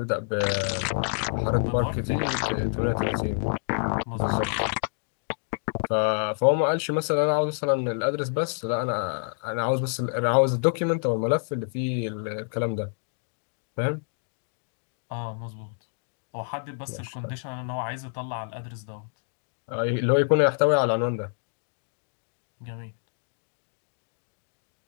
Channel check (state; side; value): silent; right; digital silence